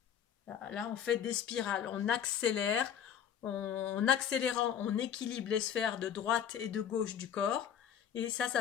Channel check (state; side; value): quieter; right; 8.8 dB